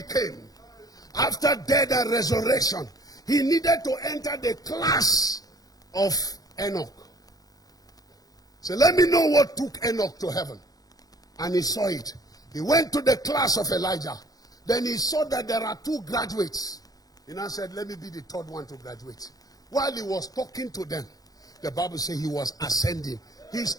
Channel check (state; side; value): late; right; 0.18 ms